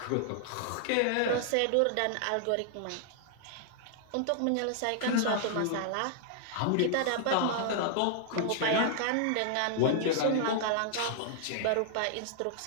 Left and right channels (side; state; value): both; different; correlation -0.01